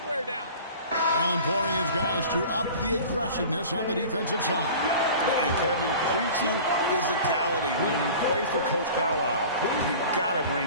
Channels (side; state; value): both; inverted; correlation -0.40